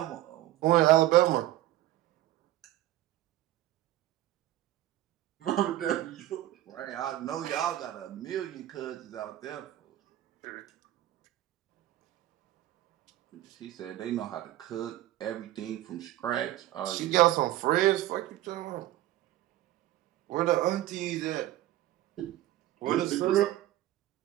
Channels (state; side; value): quieter; left; 14.6 dB